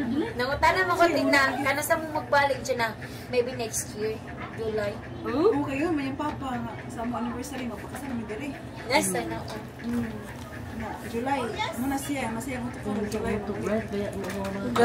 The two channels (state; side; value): identical; both; correlation 1.00